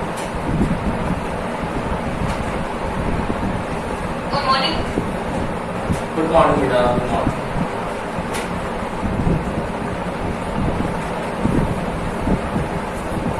Good morning. Good morning बेटा, good morning.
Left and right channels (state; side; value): identical; both; correlation 1.00